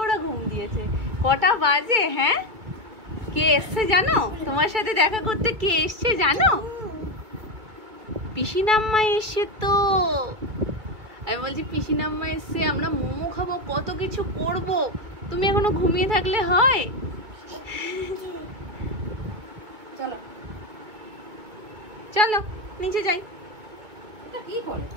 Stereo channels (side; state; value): left; late; 2.3 ms